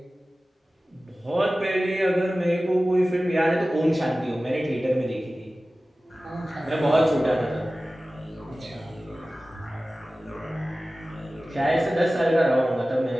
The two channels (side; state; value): both; normal; correlation 0.96